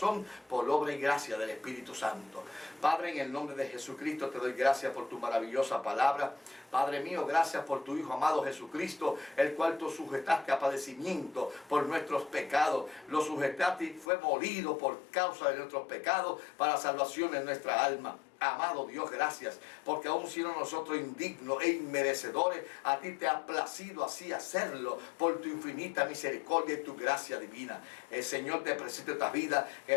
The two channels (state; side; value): drops out; right; at 14.1 s